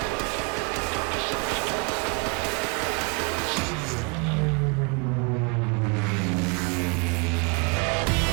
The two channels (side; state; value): left; quieter; 31.9 dB